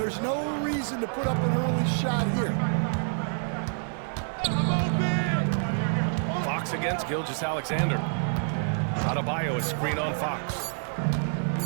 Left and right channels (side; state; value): left; silent; digital silence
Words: no reason to put up an early shot here. Fox against Gilgeous-Alexander. Adebayo is screen on Fox.